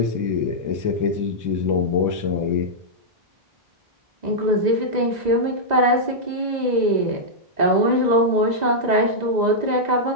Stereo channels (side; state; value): left; late; 2.0 ms